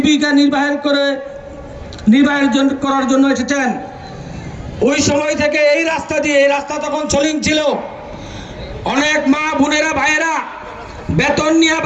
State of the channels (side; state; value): both; identical; correlation 1.00